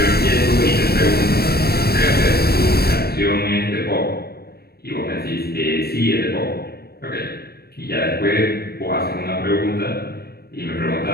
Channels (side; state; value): right; late; 0.46 ms